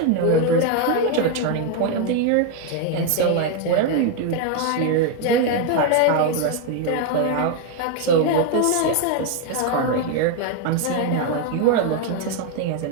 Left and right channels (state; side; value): different; both; correlation 0.01